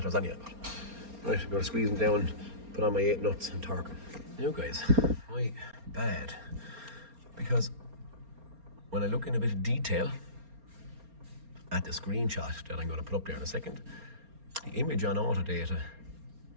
anyway. But, right, I'm going to squeeze them down, put on my 8 nuts and torque them. Now guys, my bad, because when I look in a bit of detail at the screenshot that I'm going to put up there in a second, the image on Autodata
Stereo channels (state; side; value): late; left; 4.3 ms